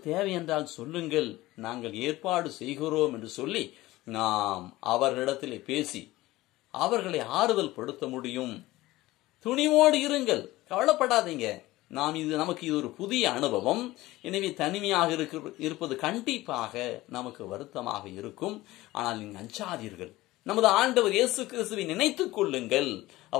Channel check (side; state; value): right; quieter; 18.0 dB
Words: தேவை என்றால் சொல்லுங்கள், நாங்கள் ஏற்பாடு செய்கிறோம் என்று சொல்லி நாம் அவர்களிடத்திலே பேசி அவர்களை ஆறுதல் படுத்த முடியும். துணிவோடு இருங்கள், கவலைப்படாதீங்க. நமக்கு இது ஒரு புதிய அனுபவம். எனவே தனிமையாக இருப்பது கண்டிப்பாக நமக்கு வருத்தமாக இருக்கும். ஆனால் நீங்கள் அஞ்சாதீர்கள். நமது ஆண்டவர் இயேசு கிறிஸ்துவை நினைத்துக் கொள்ளுங்கள்.